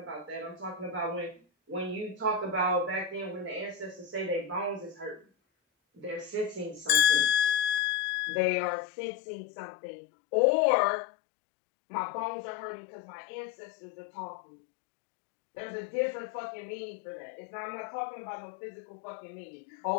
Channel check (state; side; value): drops out; right; at 7.8 s